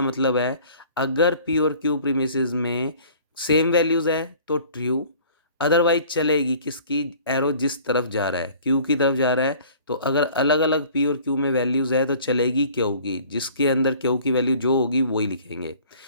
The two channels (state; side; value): inverted; both; correlation -0.50